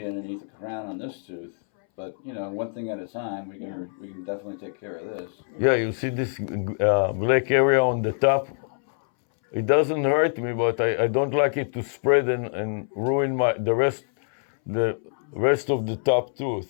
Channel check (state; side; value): silent; right; 62 dB below the other